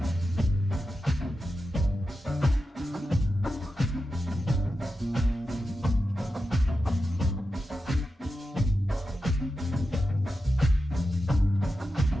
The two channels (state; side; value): normal; both; correlation 0.90